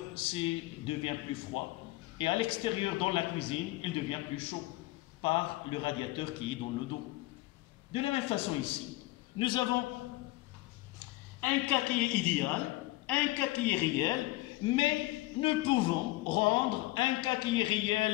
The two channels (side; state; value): right; quieter; 19.5 dB